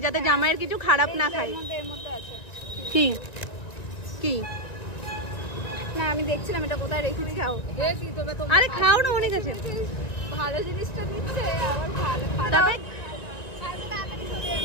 যাতে জামাইয়ের কিছু খারাপ না খাই। কি কি না, আমি দেখছিলাম এটা কোথায় রেখেছি। খাও। আরে খাও না, অনেক আছে। ভালো জিনিসটা দিচ্ছে, আবার ভালো খারাপ।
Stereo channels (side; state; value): right; late; 1.9 ms